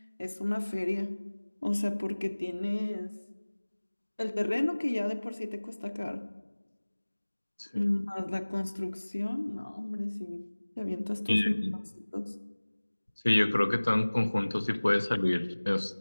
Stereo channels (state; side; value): inverted; both; correlation -1.00